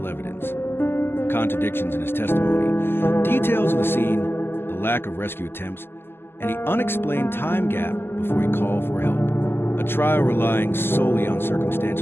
evidence. Contradictions in his testimony, details of the scene, the lack of rescue attempts, and the unexplained time gap before he called for help. A trial relying solely on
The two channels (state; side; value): late; right; 0.11 ms